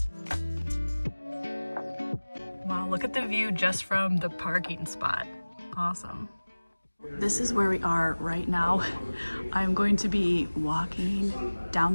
Wow, look at the view just from the parking spot. Awesome. This is where we are right now. I'm going to be walking down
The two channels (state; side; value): inverted; both; correlation -1.00